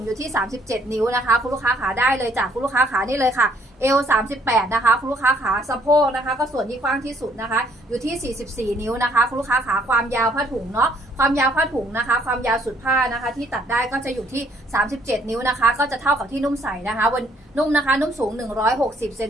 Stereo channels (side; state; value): both; normal; correlation 0.65